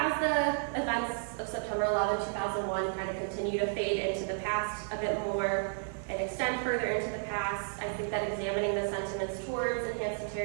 the events of September 11, 2001 kind of continue to fade into the past a bit more and extend further into the past, I think that examining the sentiments towards enhanced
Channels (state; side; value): silent; left; 55 dB below the other